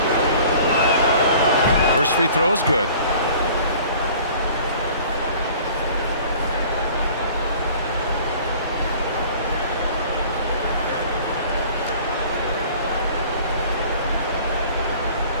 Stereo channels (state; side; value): inverted; both; correlation -0.49